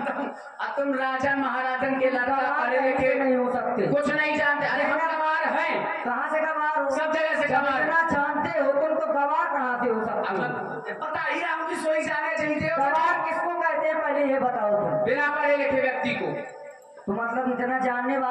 हूँ, अब तुम राजा महाराजन के लड़का पढ़े लिखे नहीं हो सकते, कुछ नहीं जानते। अरे हम गंवार हैं। कहाँ से गंवार हो? सब जगह से गंवार। जानते हो तुमको गंवार कहाँ से हो सकते? पता ही रहा हूँ कि सोई जाने चाहिए। गंवार किसको कहते हैं पहले ये बताओ तुम? बिना पढ़े लिखे व्यक्ति को। तो मतलब इतना जानने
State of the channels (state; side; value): identical; both; correlation 1.00